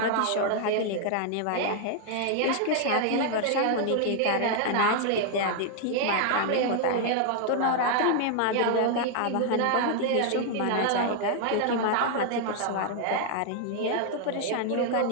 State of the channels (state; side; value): different; both; correlation 0.00